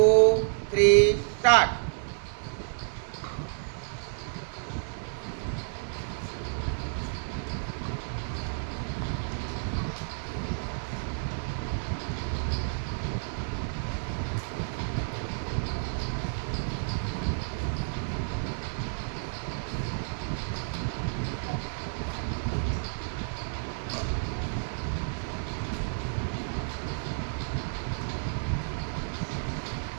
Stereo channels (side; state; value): left; silent; digital silence